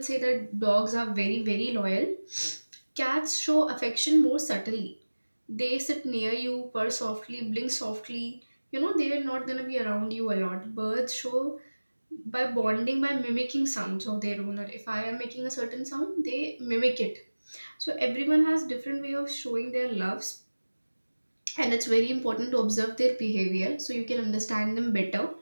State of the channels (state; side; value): inverted; both; correlation -1.00